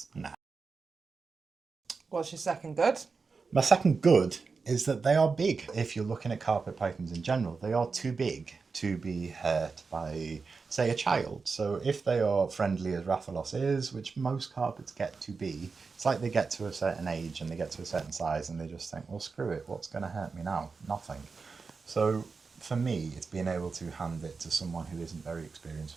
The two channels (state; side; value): quieter; left; 4.7 dB